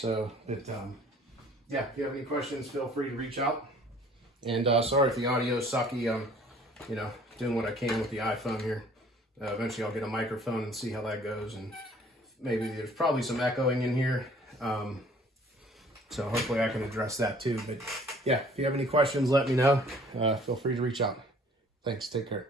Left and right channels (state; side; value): normal; both; correlation 0.54